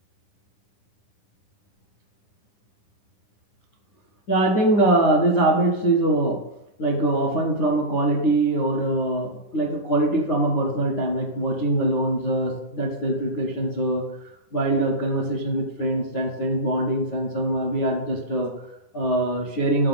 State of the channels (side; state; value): right; late; 9.6 ms